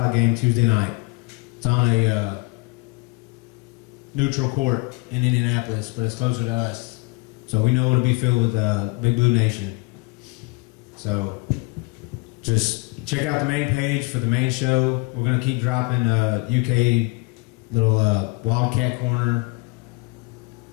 game Tuesday night. It's on a neutral court in Indianapolis, but it's closer to us, so we know it'll be filled with Big Blue Nation. So just check out the main page for the main show. We're gonna keep dropping UK little Wildcat Corner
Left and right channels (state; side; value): quieter; right; 25.4 dB